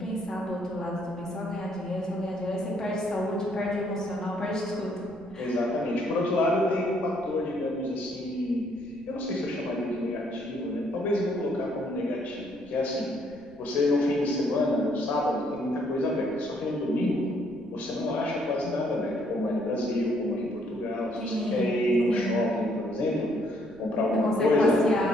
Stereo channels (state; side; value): noise; right; rumble, 26 dB below the sound